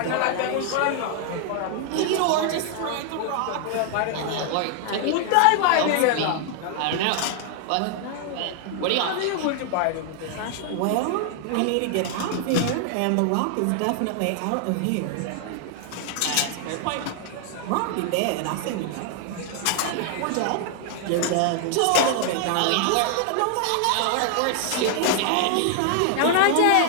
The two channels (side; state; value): both; different; correlation 0.00